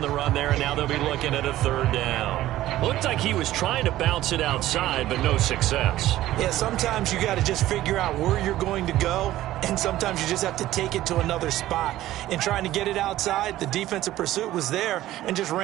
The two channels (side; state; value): left; quieter; 14.8 dB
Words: the run there, and now they'll be looking at a 3rd down. Looked like he was trying to bounce it outside, but no success. Yeah, sometimes you got to just figure out where you're going to go, and sometimes you just have to take it to another spot. In trying to get it outside, the defensive pursuit was there and just